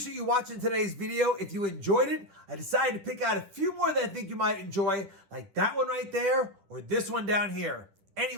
you watching today's video. If you enjoyed it, I decided to pick out a few more that I think you might enjoy, like that one right there or this one down here.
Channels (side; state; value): left; late; 10 ms